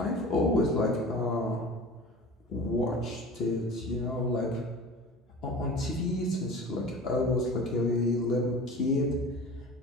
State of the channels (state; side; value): normal; both; correlation 0.38